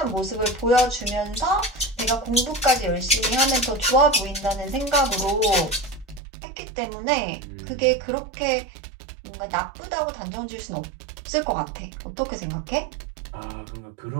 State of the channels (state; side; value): drops out; left; at 6.2 s